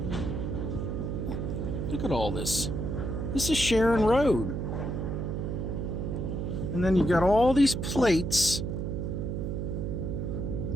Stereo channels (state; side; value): noise; right; hum, 2 dB below the sound